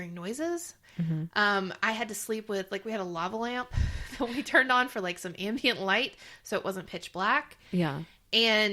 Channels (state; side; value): identical; both; correlation 1.00